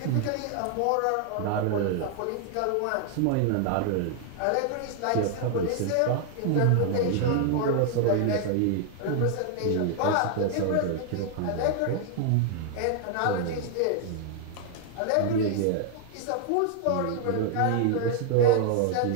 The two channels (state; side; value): different; both; correlation 0.00